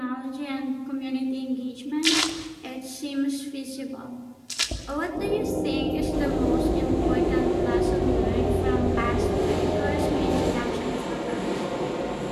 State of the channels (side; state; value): both; identical; correlation 1.00